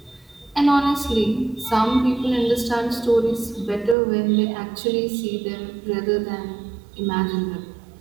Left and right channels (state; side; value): drops out; left; at 4.0 s